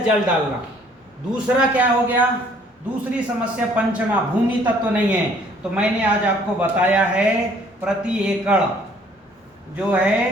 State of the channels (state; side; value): normal; both; correlation 0.59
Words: डालना। दूसरा क्या हो गया? दूसरी समस्या पंचमा, भूमि तत्व नहीं है। तो मैंने आज आपको बताया है प्रति एकड़ जो